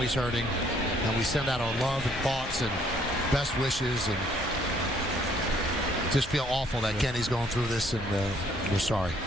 hurting. And we send out our love and thoughts and best wishes, and just feel awful that Kenny's going through this, and we're sorry.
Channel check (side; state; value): both; normal; correlation 0.64